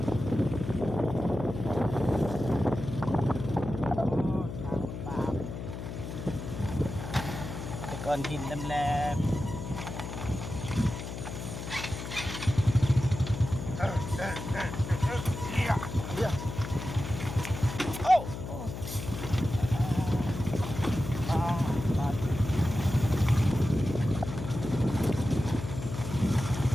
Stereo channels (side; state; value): left; noise; hum, 7 dB below the sound